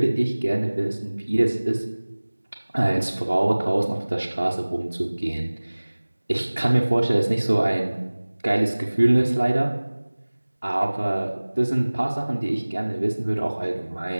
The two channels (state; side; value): inverted; both; correlation -1.00